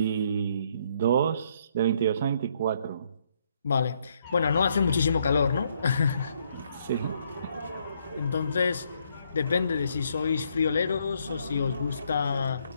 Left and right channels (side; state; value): both; inverted; correlation -0.71